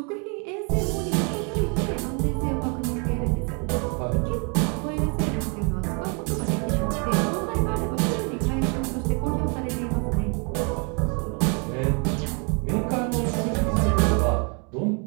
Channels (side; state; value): left; quieter; 35.6 dB